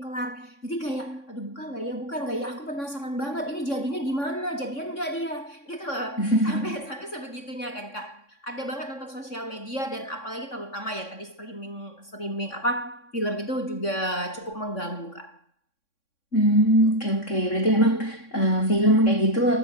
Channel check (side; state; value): right; late; 3.6 ms